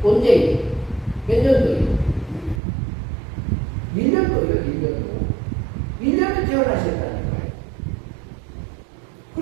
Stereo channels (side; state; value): left; drops out; at 2.6 s